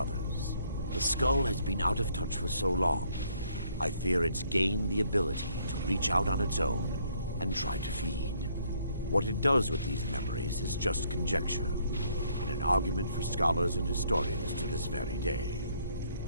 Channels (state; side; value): inverted; both; correlation -0.67